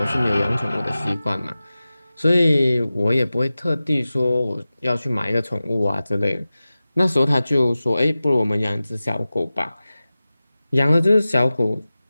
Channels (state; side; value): inverted; both; correlation -0.96